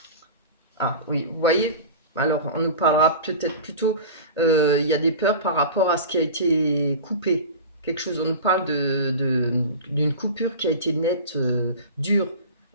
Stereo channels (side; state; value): both; inverted; correlation -0.33